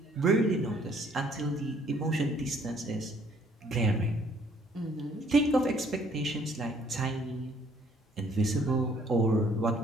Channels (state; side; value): normal; both; correlation 0.62